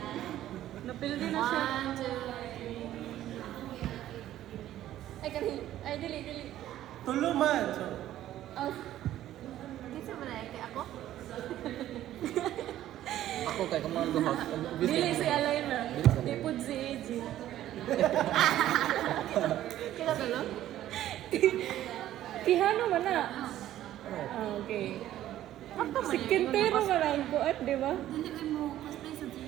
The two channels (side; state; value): left; quieter; 13.0 dB